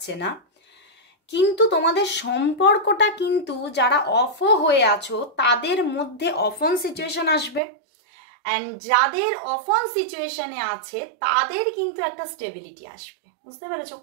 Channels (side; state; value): left; drops out; at 7.6 s